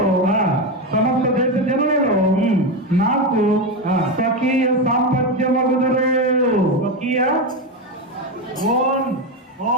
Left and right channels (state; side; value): normal; both; correlation 0.13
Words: సమస్త దేశ జనులలో నాకు స్వకీయ సాంపత్యమగుదురు. స్వకీయ